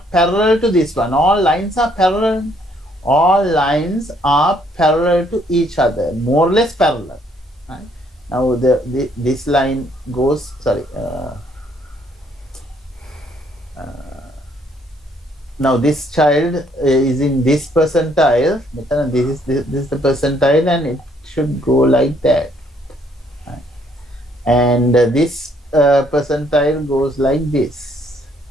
parallel to this one. All lines are parallel. All lines are parallel to each other, more or less parallel. Right? Now this line goes. Sorry. Now this child is in this percentile. This is the percentile, and it should go like that. Right? And this percentile goes like this.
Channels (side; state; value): both; normal; correlation 0.67